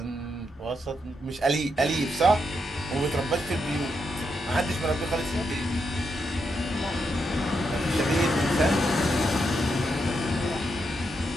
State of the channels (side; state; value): both; normal; correlation 0.82